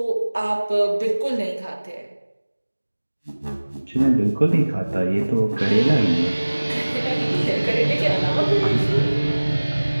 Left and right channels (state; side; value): inverted; both; correlation -1.00